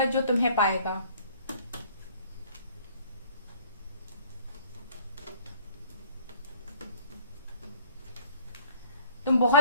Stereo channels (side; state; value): both; inverted; correlation -0.55